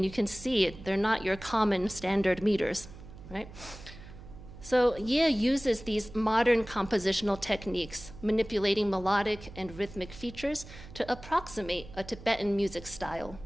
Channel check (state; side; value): noise; right; hum, 16 dB below the sound